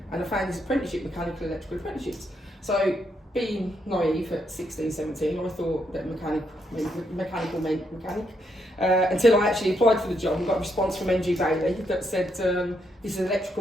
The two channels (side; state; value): both; normal; correlation 0.77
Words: and I found this apprenticeship, mechanical electrical apprenticeships. So being naive at 16, 17, I thought that mechanical meant mechanic. Until I actually applied for the job and got a response from NG Bailey that said, this is